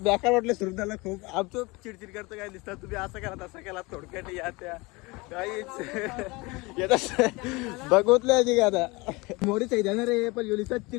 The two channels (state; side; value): quieter; right; 24.7 dB